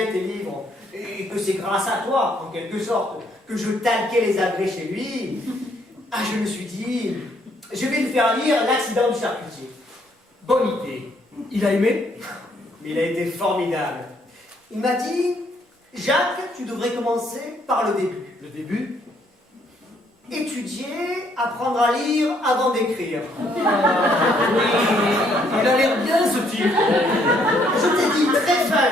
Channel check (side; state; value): both; normal; correlation 0.69